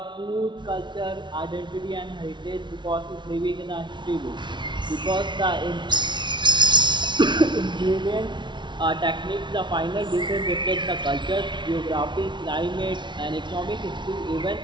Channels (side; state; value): left; late; 0.23 ms